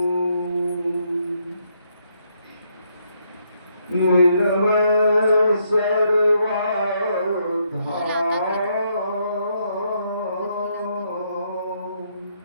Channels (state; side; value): inverted; both; correlation -0.74